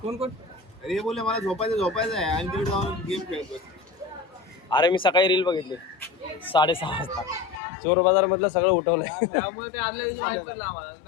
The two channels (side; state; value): right; drops out; at 7.6 s